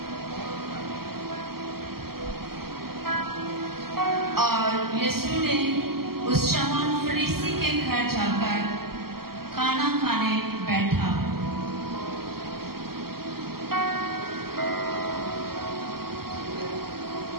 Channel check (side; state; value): left; late; 0.94 ms